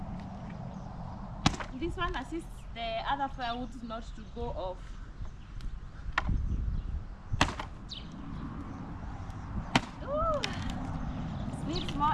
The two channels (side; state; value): both; identical; correlation 1.00